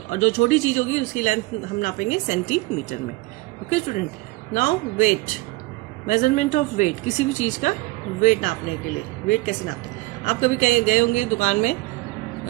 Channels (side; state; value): left; quieter; 21.8 dB